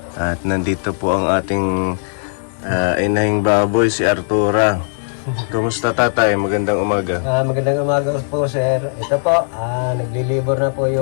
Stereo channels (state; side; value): silent; right; digital silence